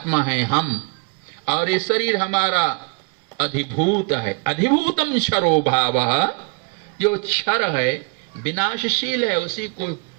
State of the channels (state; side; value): quieter; left; 34.5 dB